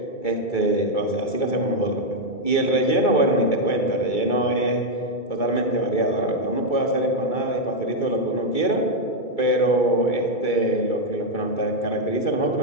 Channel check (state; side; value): late; right; 2.3 ms